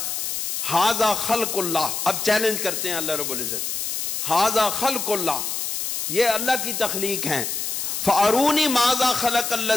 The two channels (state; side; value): noise; left; hiss, 2 dB below the sound